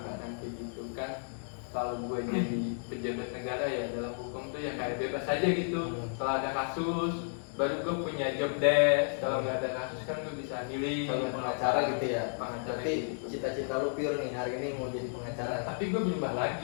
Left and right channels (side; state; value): right; silent; digital silence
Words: Bukan kayak gitu kan. Kalau gue jadi pejabat negara ya dalam hukum tuh ya kayak bebas aja gitu. Kalau ada kasus baru gue punya job desk. Kalau nggak ada kasus kan gue bisa milih. Kalau pengacara gitu ya? Pengacara Berarti gitu. cita-cita lu pure nih hari ini mau jadi pengacara. Tapi gue berubah